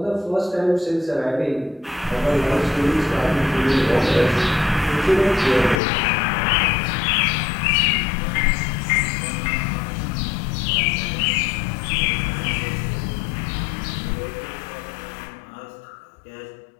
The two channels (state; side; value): drops out; right; at 5.8 s